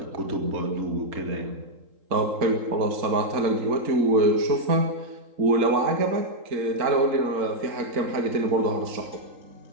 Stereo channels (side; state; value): left; late; 3.8 ms